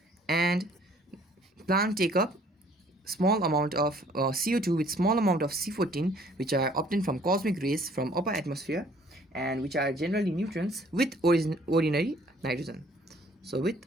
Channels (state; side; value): normal; both; correlation 0.58